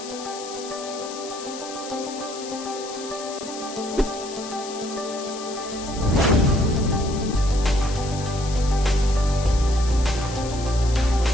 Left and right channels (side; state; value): left; noise; hiss, 12 dB below the sound